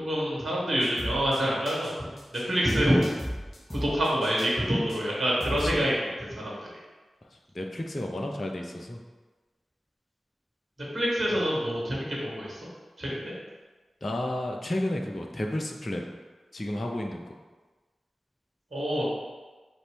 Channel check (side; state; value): both; normal; correlation 0.93